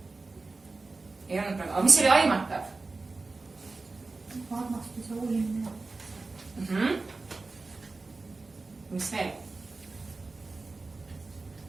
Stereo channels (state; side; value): quieter; left; 3.7 dB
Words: Ei olnud praegu, aga mis oli aimatav? Armastuse uurimine. Mis veel?